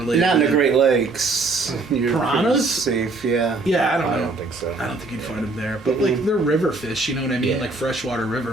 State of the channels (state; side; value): quieter; left; 3.5 dB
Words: Not in to the them. Great Lakes. You're Piranhas? pretty safe, yeah. Yeah, I don't know. I don't think so. I don't think you'd find them there. But like they're river fish, you know what I mean? Yeah. Like freshwater